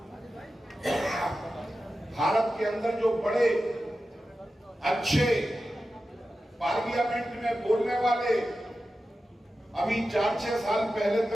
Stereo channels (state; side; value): normal; both; correlation 0.92